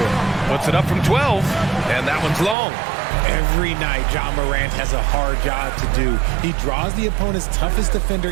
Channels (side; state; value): left; drops out; at 2.6 s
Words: Puts it up from 12, and that one's long. Every night, John Morant has a hard job to do. He draws the opponent's toughest defender